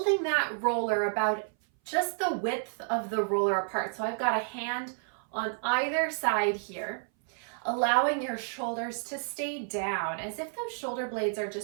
that roller about just the width of the roller apart. So I've got a hand on either side here, allowing your shoulders to stay down as if those shoulder blades are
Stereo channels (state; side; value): silent; left; 58 dB below the other